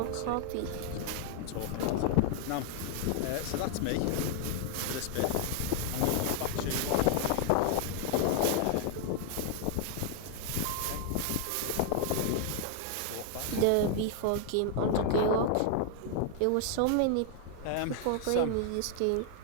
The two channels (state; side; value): different; both; correlation 0.00